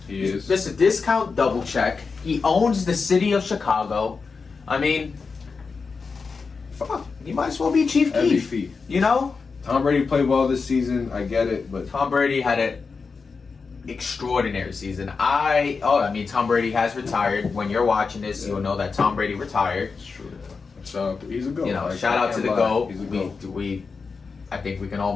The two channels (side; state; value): right; quieter; 4.8 dB